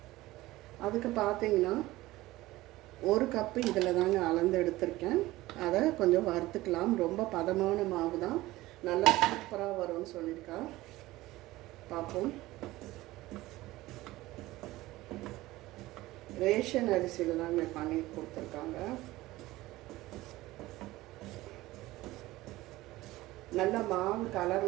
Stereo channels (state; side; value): quieter; left; 18.0 dB